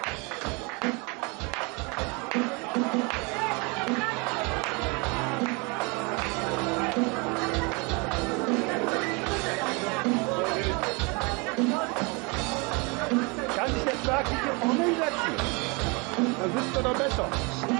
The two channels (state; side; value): quieter; left; 29.7 dB